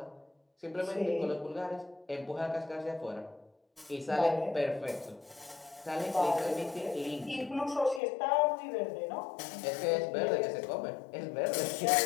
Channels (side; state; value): right; drops out; at 8.0 s